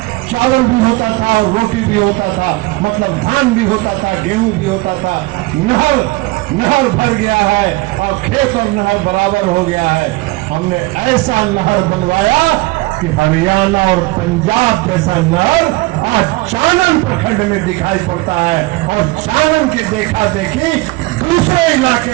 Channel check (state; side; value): quieter; left; 22.0 dB